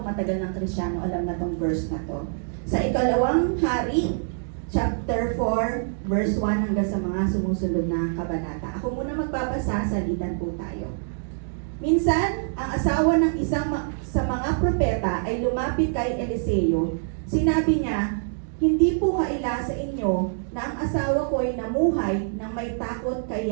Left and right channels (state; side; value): silent; left; digital silence